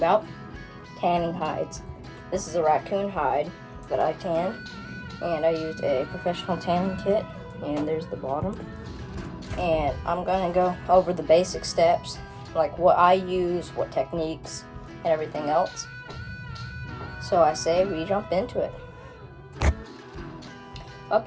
tanning hides. This is a raccoon hide that I tanned, and I used a professional tanning kit, and there's the bottom. And I'm going to go over the basic steps, like what I use, what techniques, and everything else. So I say we jump into it.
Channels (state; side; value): identical; both; correlation 1.00